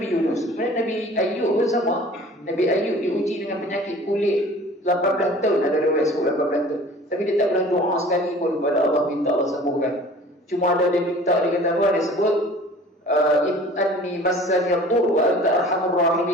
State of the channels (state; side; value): normal; both; correlation 0.46